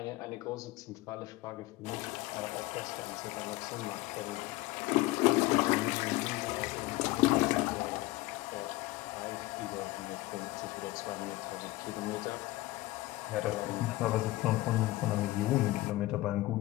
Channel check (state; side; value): quieter; right; 18.7 dB